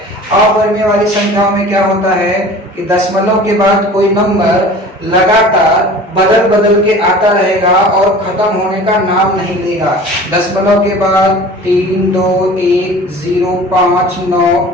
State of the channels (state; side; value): normal; both; correlation 0.42